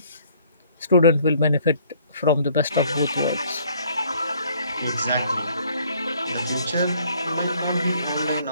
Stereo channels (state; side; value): inverted; both; correlation -0.61